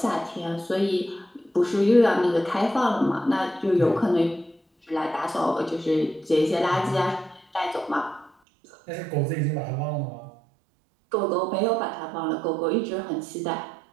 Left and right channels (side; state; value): left; drops out; at 8.3 s